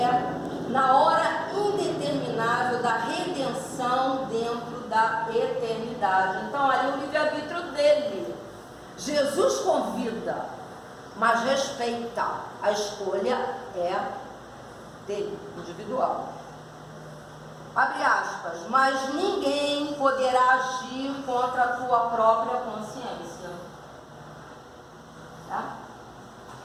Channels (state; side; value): identical; both; correlation 1.00